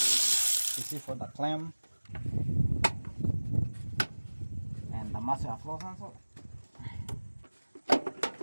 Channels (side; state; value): both; inverted; correlation -1.00